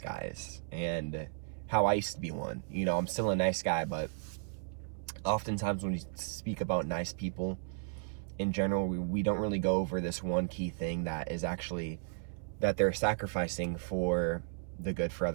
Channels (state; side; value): silent; left; 55 dB below the other